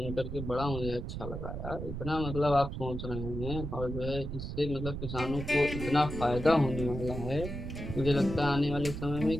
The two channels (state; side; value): noise; right; rumble, 6 dB below the sound